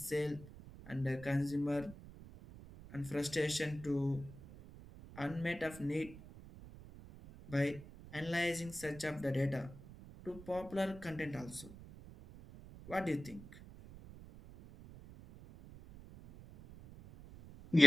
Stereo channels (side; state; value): right; noise; rumble, 16 dB below the sound